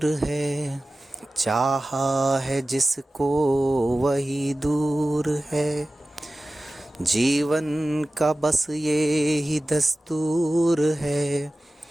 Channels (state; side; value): normal; both; correlation 0.96